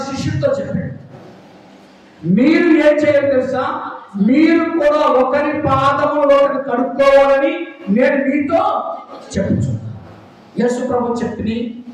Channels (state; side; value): identical; both; correlation 1.00